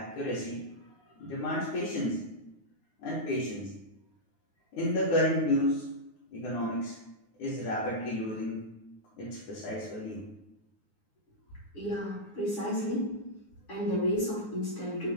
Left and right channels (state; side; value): late; right; 9.6 ms